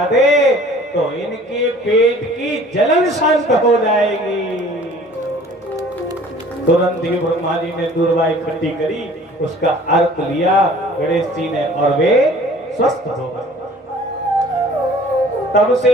दे तो इनके पेट की जलन शांत हो जाएगी। तुरंत ही ब्रह्मा जी ने दूर्वा इकट्ठी करी, उसका अर्क लिया गणेश जी ने और वे स्वस्थ हो गए। तब से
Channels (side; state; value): both; normal; correlation 0.50